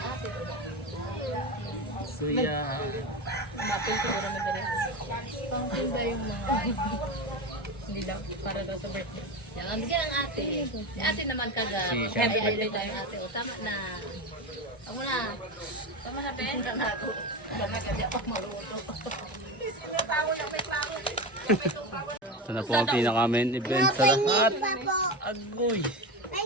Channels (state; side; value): normal; both; correlation 0.21